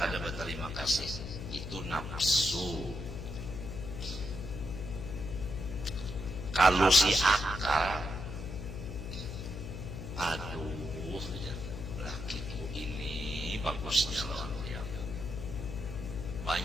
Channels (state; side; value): noise; left; hum, 7 dB below the sound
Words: berterima kasih. Itu nafsu. Kalau si akal, aduh, lakiku ini bagusnya lawan dia.